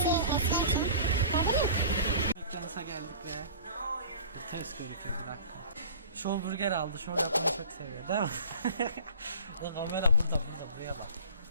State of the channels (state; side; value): inverted; both; correlation -0.42